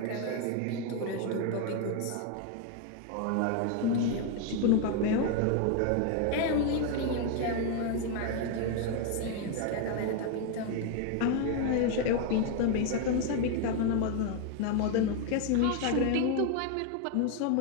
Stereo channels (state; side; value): different; both; correlation 0.01